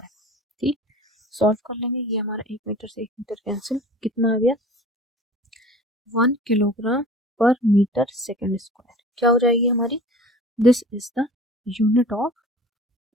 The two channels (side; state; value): both; normal; correlation 0.42